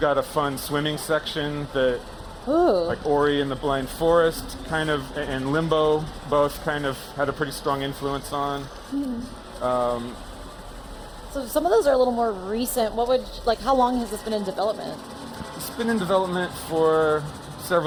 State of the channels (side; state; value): both; identical; correlation 1.00